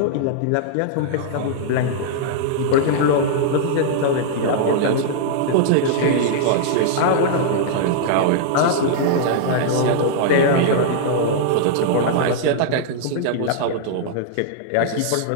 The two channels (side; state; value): both; different; correlation -0.01